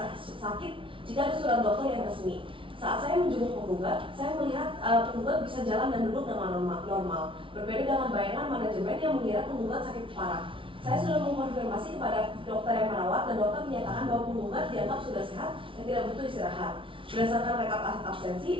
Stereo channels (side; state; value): left; late; 0.25 ms